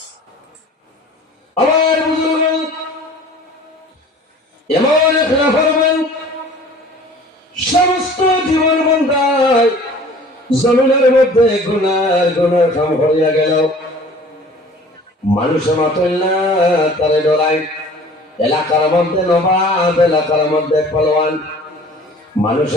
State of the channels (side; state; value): both; normal; correlation 0.47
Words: আমার বুজুর্গ এমন এক নাফরমান সমস্ত জীবন বান্দায় জমিনের মধ্যে গুনার গুনার কাম হইয়া গেল। মানুষে মাতল না, তারে ডরাই। এলাকার মধ্যে নবাব, এলাকার মধ্যে পালোয়ান,